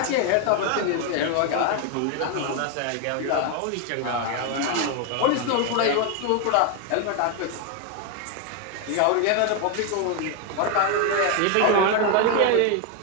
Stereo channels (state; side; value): different; both; correlation 0.01